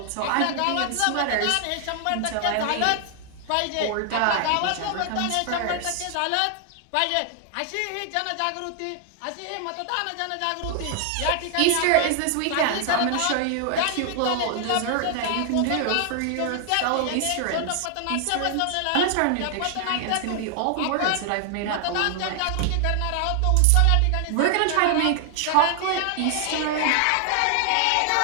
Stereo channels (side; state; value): both; different; correlation 0.00